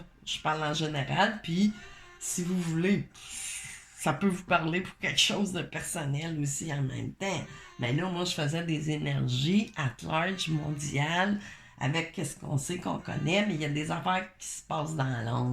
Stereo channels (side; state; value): both; identical; correlation 1.00